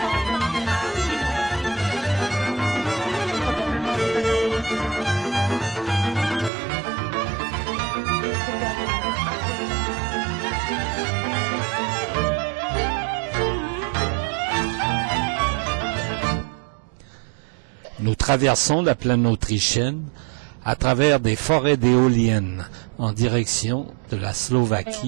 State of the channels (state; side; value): drops out; left; at 6.5 s